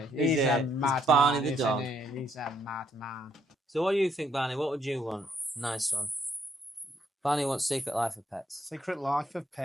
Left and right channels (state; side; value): normal; both; correlation 0.70